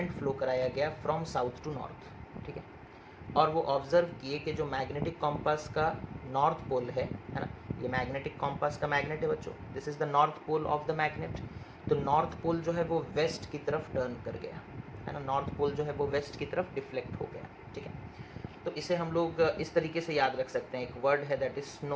फ्लो कराया गया फ्रॉम साउथ टू नॉर्थ। ठीक है, और वो ऑब्जर्व किए कि जो मैग्नेटिक कॉम्पास का नॉर्थ पोल है ना, ये मैग्नेटिक कॉम्पास का मैग्नेट है बच्चों, this is the north pole of the magnet. तो नॉर्थ पोल जो है वो वेस्ट की तरफ टर्न कर गया, है ना, नॉर्थ पोल जो है वो वेस्ट की तरफ डिफ्लेक्ट हो गया। ठीक है, तो इसे हम लोग इस तरीके से याद रख सकते हैं, एक वर्ड है दैट इज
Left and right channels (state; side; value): identical; both; correlation 1.00